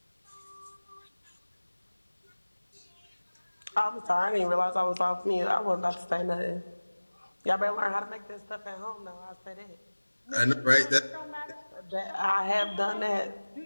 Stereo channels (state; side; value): inverted; both; correlation -1.00